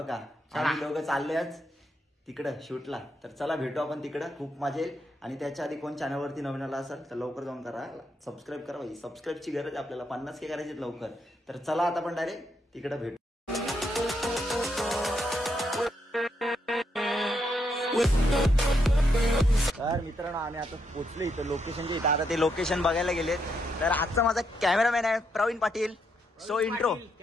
आम्ही दोघं चाललोय आज तिकडं शूटला। तर चला भेटू आपण तिकडं, खूप मजा येईल। आणि त्याच्या आधी कोण चॅनलवरती नवीन आला असेल तर लवकर जाऊन करा सबस्क्राईब करा भाई। सबस्क्राईबची गरज आहे आपल्याला, 50K करायची लवकर। तर चला आता आपण डायरेक्ट तिकडं भेटू। तर मित्रांनो आम्ही आता पोहोचलो इथं लोकेशनच्या इथं। आता ते लोकेशन बघायला गेलेत। तर आजचा माझा कॅमेरामॅन आहे Praveen Patil. So intro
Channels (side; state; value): both; normal; correlation 0.79